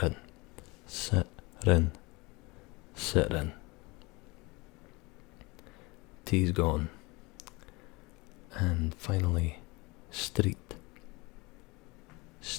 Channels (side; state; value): right; quieter; 25.0 dB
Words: T's gone. And finally, street.